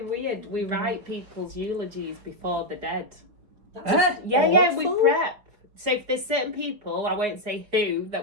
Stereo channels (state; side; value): late; left; 4.8 ms